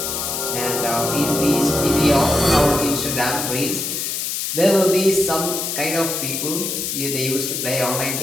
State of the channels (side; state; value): left; noise; hiss, 2 dB below the sound